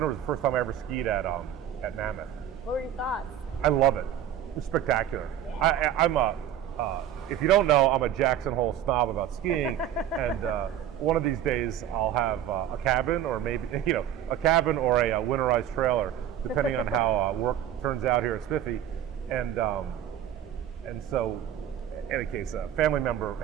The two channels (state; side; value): quieter; left; 10.4 dB